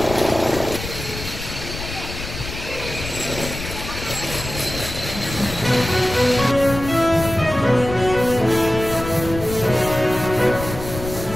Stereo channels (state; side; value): noise; left; rumble, 9 dB below the sound